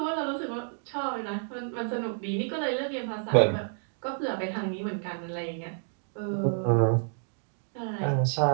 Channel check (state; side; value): silent; left; digital silence